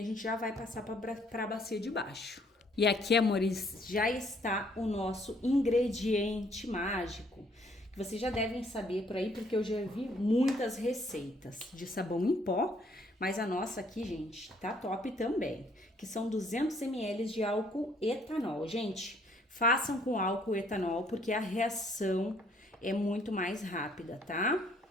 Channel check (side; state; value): both; normal; correlation 0.64